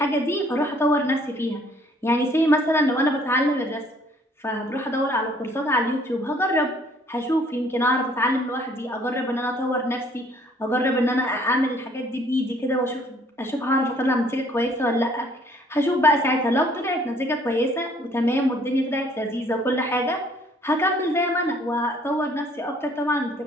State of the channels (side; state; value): both; normal; correlation 0.60